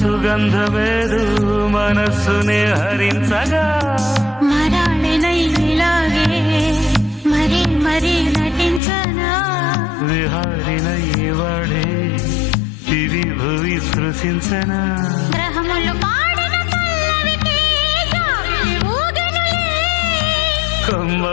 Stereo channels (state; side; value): drops out; right; at 8.8 s